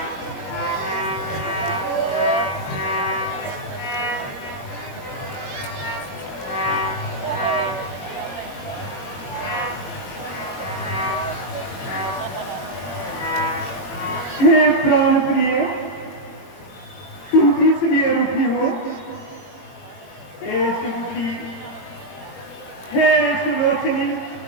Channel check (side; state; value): right; late; 21 ms